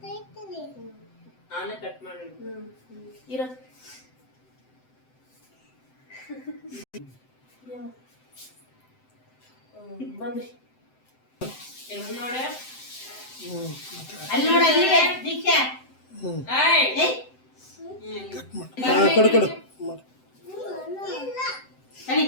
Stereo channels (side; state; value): right; late; 7.8 ms